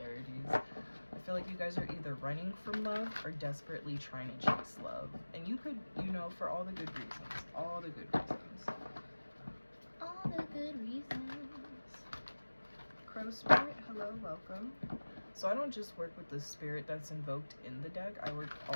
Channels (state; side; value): inverted; both; correlation -1.00